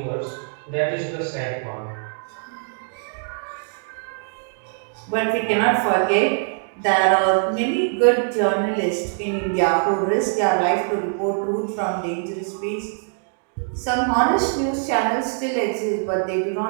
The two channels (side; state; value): left; silent; 61 dB below the other